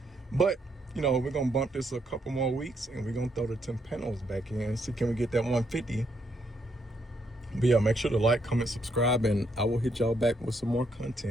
but you know, we're gonna bump this a couple more weeks and we're gonna throw the Timpanos back in, see can we get that 150. But yeah, make sure to like, comment, subscribe, and I will hit y'all back with some more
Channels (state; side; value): normal; both; correlation 0.75